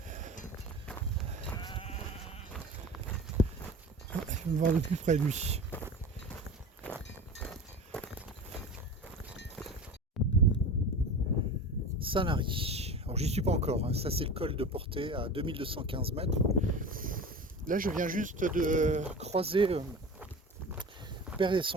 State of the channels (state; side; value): normal; both; correlation 0.33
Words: Je vais me voir de plus près de lui. Sanary. Alors j'y suis pas encore, hein. Ça c'est le col de Portet à 2215 mètres. Là je viens juste de croiser le père et